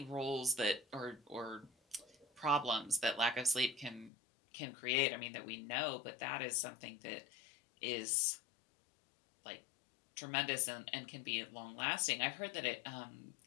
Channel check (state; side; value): drops out; right; at 4.1 s